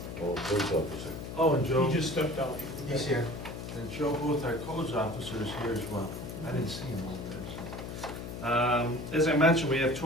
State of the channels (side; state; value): left; noise; hum, 8 dB below the sound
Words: Oh, police officer. Oh, and Joe. He just stepped out. He's here. And Joe Booth, our codes officer, is here as well. I didn't see him over there. So. As I mentioned, we have